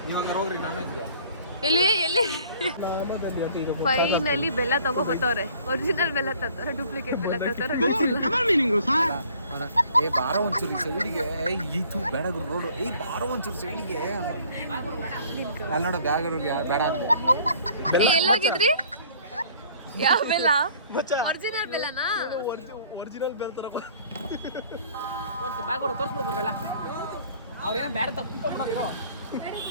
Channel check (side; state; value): both; inverted; correlation -0.55